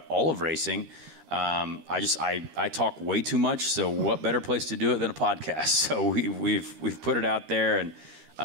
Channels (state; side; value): late; left; 13 ms